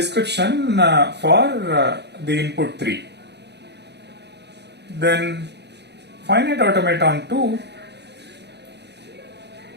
for the input 3. Then finite automaton 2,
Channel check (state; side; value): late; left; 0.49 ms